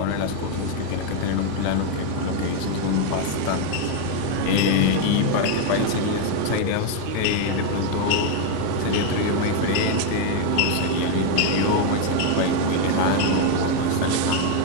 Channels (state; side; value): different; both; correlation 0.01